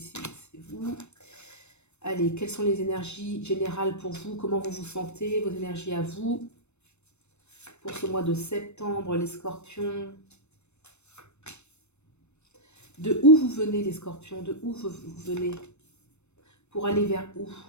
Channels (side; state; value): right; late; 0.81 ms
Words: c'est vous. Allez, quelles sont les énergies générales pour vous? Comment vous vous sentez? Vos énergies à vous pour ce mois de septembre, les scorpions. De où vous venez, les scorpions? De où vous venez? Pour aller vers où?